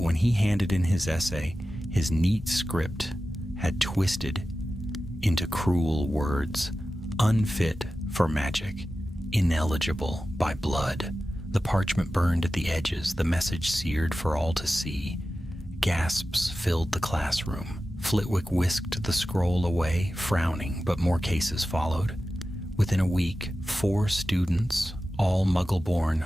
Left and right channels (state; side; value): normal; both; correlation 0.94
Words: when he handed in his essay, his neat script had twisted into cruel words, unfit for magic, ineligible by blood. The parchment burned at the edges, the message seared for all to see. Gasps filled the classroom. Flitwick whisked the scroll away, frowning, but more cases followed. Within a week, 4 students, all Muggle-born,